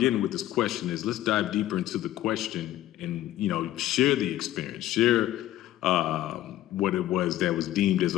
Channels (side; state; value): right; quieter; 14.1 dB